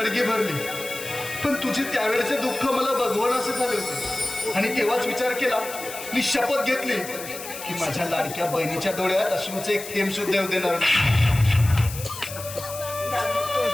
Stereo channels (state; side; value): noise; left; hiss, 11 dB below the sound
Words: भरली. पण तुझे त्यावेळेचे दुःख मला भगवान असं झाले होते. आणि तेव्हाच विचार केला, मी शपथ घेतली की माझ्या लाडक्या बहिणीच्या डोळ्यात अश्रूचं एक थेंब सुद्धा येऊ देणार नाही.